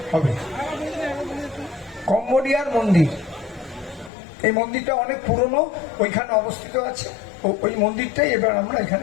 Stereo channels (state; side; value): drops out; right; at 4.1 s